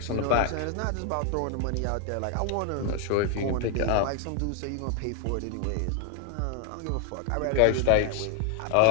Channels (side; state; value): both; different; correlation 0.00